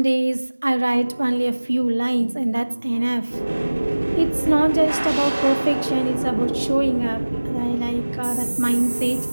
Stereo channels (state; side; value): inverted; both; correlation -1.00